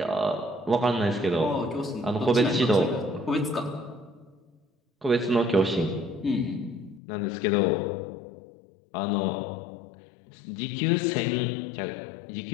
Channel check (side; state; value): right; drops out; at 7.0 s